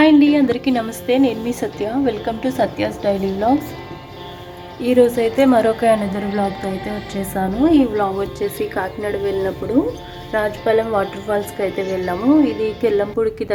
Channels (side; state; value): both; identical; correlation 1.00